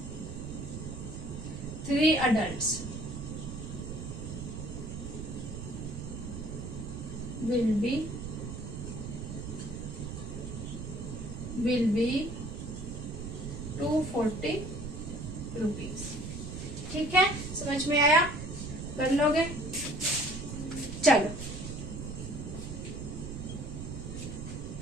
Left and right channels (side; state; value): right; noise; rumble, 7 dB below the sound